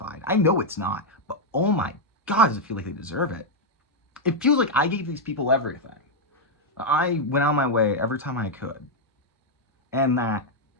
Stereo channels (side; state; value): both; normal; correlation -0.02